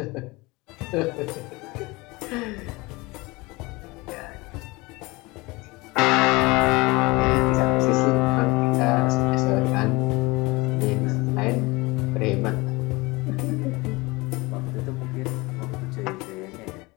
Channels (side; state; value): right; quieter; 23.6 dB